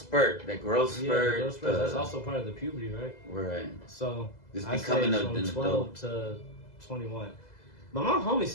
that growth spurt. Yeah, those spurts, that's also part of the puberty, right? Right. So It's I becoming say an from adult. 12 to 21. But my homie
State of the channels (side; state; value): right; late; 2.0 ms